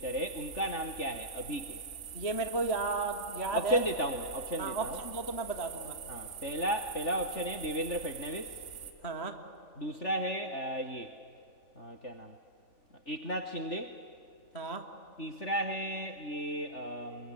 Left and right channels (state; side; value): late; right; 3.5 ms